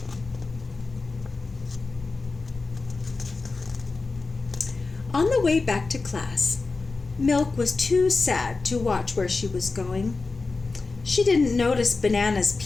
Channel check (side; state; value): right; quieter; 3.9 dB